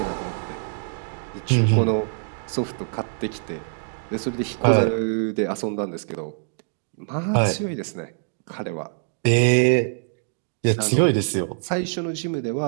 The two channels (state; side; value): silent; left; digital silence